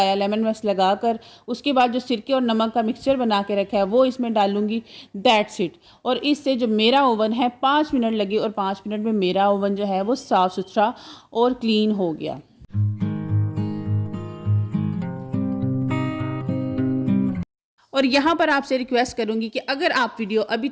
लेमन मैक्स लगाकर उसके बाद जो सिरके और नमक का मिक्सचर बना के रखा है वो इसमें डालूंगी, दैट्स इट। और इससे जो मेरा ओवन है 5 मिनट लगे और 5 मिनट में मेरा ओवन जो है वो साफ़ सुथरा और क्लीन हो गया। और यहाँ पर आपसे रिक्वेस्ट करूँगी कि अगर आप वीडियो अभी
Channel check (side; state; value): both; identical; correlation 1.00